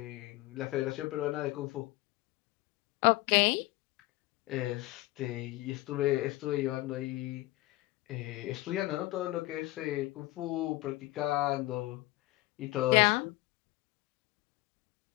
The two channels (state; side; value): quieter; right; 19.4 dB